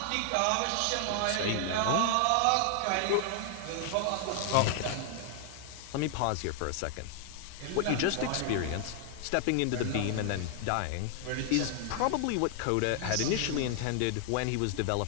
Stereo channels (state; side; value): different; both; correlation 0.00